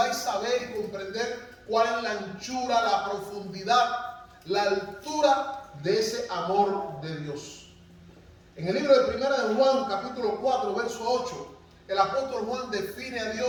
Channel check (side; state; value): both; identical; correlation 1.00